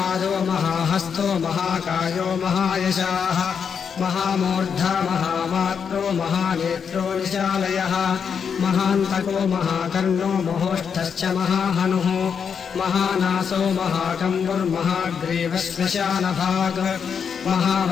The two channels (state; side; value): quieter; right; 6.8 dB